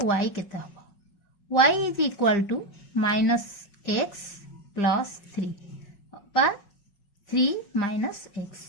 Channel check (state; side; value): late; right; 5.4 ms